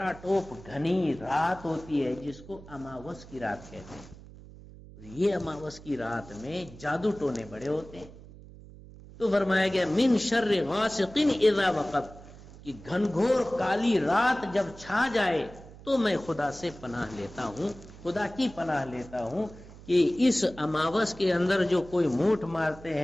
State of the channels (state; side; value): noise; right; hum, 18 dB below the sound